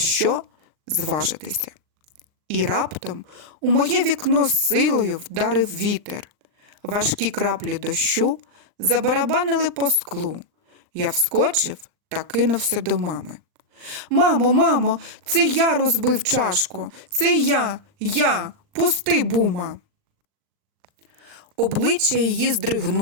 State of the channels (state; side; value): late; left; 39 ms